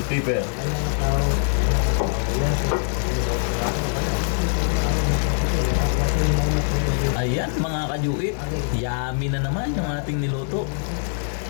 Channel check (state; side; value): silent; right; digital silence